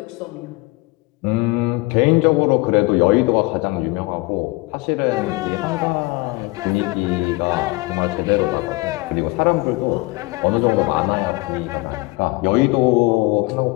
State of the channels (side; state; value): right; quieter; 23.6 dB